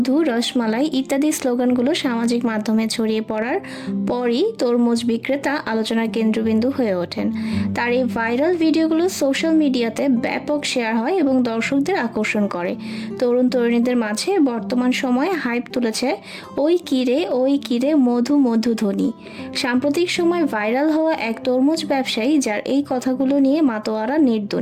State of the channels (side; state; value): both; identical; correlation 1.00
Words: রসমালাই ইত্যাদি স্লোগানগুলো সামাজিক মাধ্যমে ছড়িয়ে পড়ার পরই তরমুজ বিক্রেতা আলোচনার কেন্দ্রবিন্দু হয়ে ওঠেন। তার এই ভাইরাল ভিডিওগুলো সোশ্যাল মিডিয়াতে ব্যাপক শেয়ার হয় এবং দর্শকদের আকর্ষণ করে। তরুণ তরুণীদের মাঝে বর্তমান সময়ে হাইপ তুলেছে ওই কিরে মধু মধু ধ্বনি। সাম্প্রতিক সময় ভাইরাল হওয়া এক তরমুজ ব্যবসায়ী যার এই কথাগুলো নিয়ে মাতোয়ারা নেট